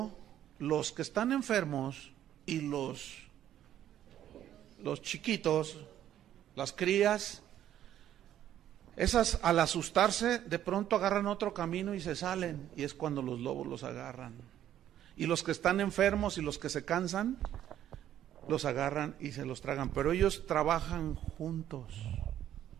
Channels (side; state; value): left; quieter; 11.3 dB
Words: los que están enfermos y los chiquitos, las crías, esas al asustarse de pronto agarran otro camino y se salen, y es cuando los lobos los agarran. Y los que están enfermos y los que se cansan, los agarran y se los tragan, pero ellos trabajan juntos